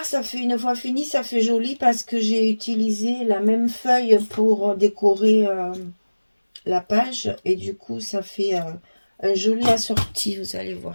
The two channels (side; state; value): both; inverted; correlation -1.00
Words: ça fait une fois fini, ça fait joli parce que j'ai utilisé la même feuille pour décorer la page. Et du coup, ça fait un joli assorti, vous allez